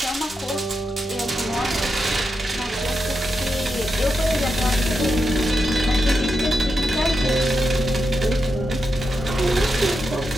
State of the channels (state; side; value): normal; both; correlation 0.86